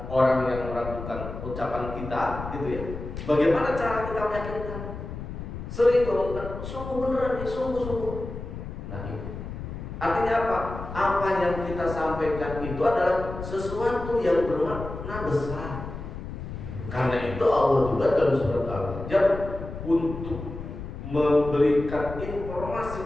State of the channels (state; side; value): noise; left; rumble, 9 dB below the sound